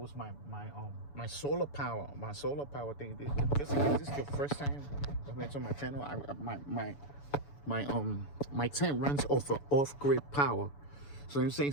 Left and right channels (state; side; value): late; right; 7.0 ms